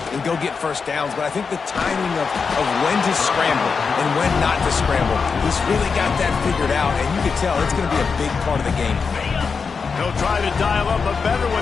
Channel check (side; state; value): right; quieter; 5.3 dB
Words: go get first downs, but I think the timing of when to scramble and when not to scramble, he's really got that figured out, and you can tell it's going to be a big part of the game. He'll try to dial up a better